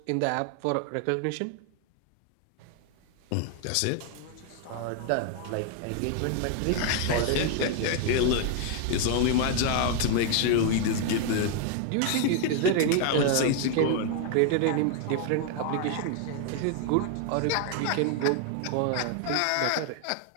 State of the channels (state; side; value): different; both; correlation 0.00